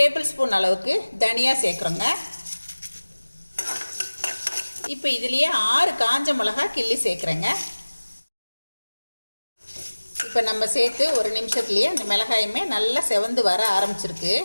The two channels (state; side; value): inverted; both; correlation -1.00